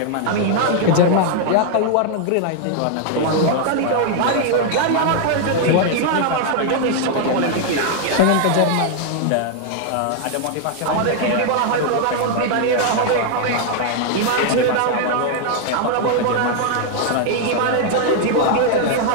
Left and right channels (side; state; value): both; different; correlation 0.00